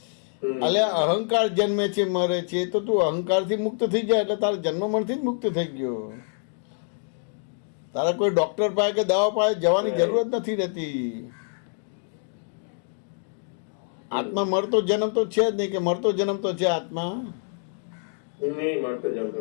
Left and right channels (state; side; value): silent; right; digital silence